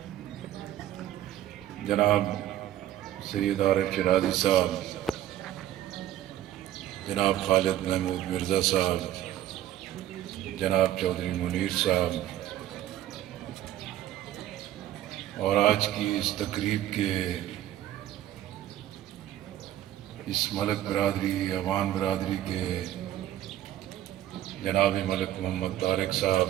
جناب سید عارف شرازی صاحب، جناب خالد محمود مرزا صاحب، جناب چودھری منیر صاحب، اور آج کی اس تقریب کے اس ملک برادری، عوان برادری کے جناب ملک محمد طارق صاحب،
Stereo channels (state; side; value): quieter; left; 12.8 dB